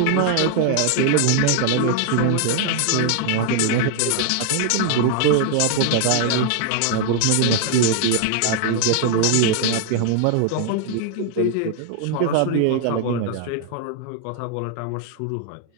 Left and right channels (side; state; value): both; different; correlation 0.00